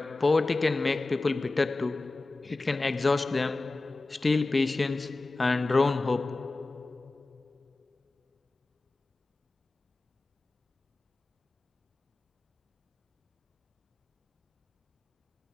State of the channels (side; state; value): right; quieter; 3.3 dB